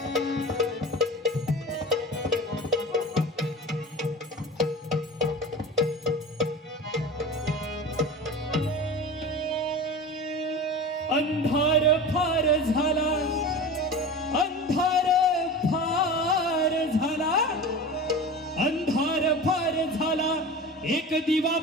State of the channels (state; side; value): normal; both; correlation 0.32